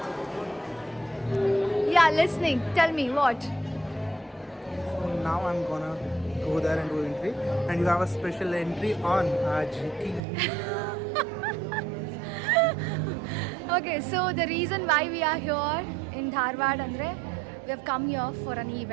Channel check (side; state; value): left; drops out; at 10.2 s